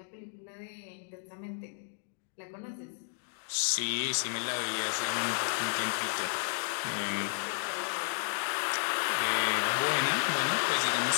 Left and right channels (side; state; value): right; silent; digital silence